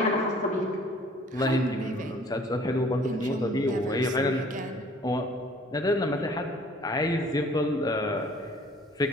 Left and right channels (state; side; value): normal; both; correlation 0.54